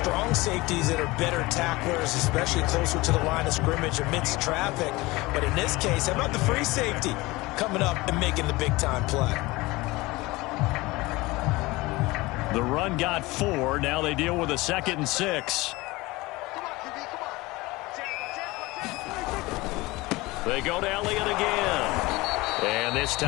safeties that are better tacklers, especially closer to the line of scrimmage amidst traffic. But in this case, how about the free safety coming up and making the big-time play? The run got 4. Now they deal with a 2nd and 6. They go to Elliott again. And this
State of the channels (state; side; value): quieter; right; 21.4 dB